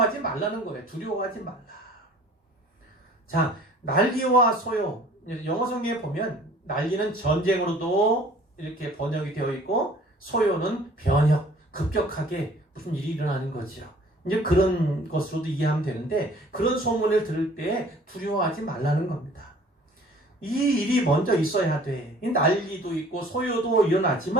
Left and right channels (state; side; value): normal; both; correlation 0.52